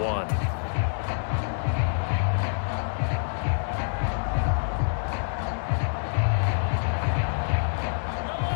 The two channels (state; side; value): silent; right; digital silence